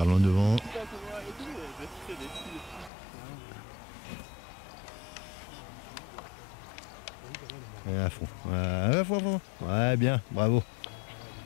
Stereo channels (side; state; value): right; drops out; at 2.9 s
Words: loin devant. Et à fond. À fond. Ouais, bien, bravo.